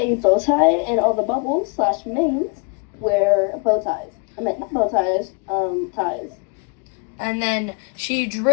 bow tie, and all the bubbles / mains wear bow ties. I meant not bow ties, ties. And then she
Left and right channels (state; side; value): quieter; right; 32.4 dB